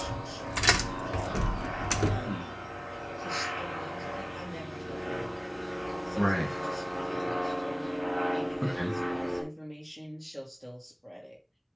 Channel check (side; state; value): both; identical; correlation 1.00